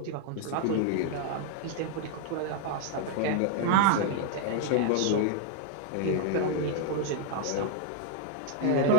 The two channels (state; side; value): different; both; correlation 0.00